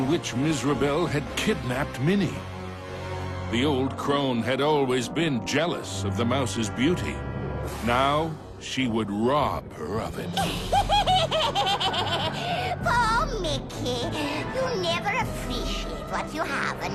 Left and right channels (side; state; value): both; identical; correlation 1.00